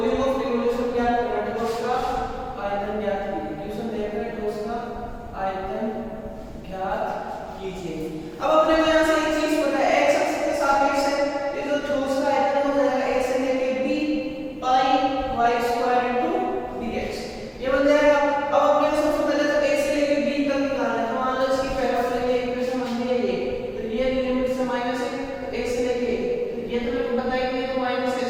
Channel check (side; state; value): both; identical; correlation 1.00